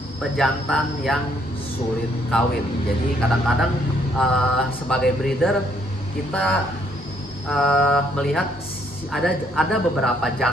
pejantan yang sulit kawin. Jadi kadang-kadang sebagai breeder kita melihat ada beberapa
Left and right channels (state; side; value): normal; both; correlation 0.68